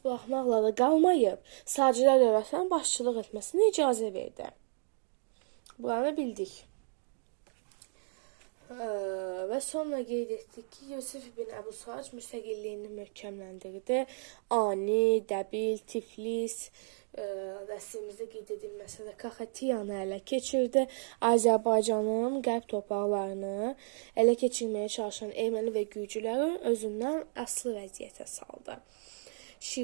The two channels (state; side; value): silent; left; digital silence